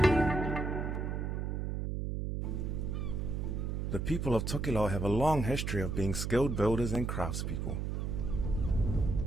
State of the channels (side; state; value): right; noise; hum, 2 dB below the sound